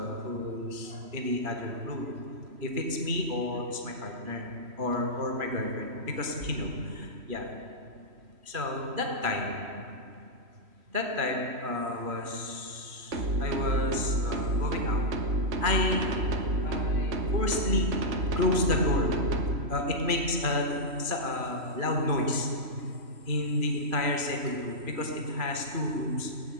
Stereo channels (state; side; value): late; left; 3.1 ms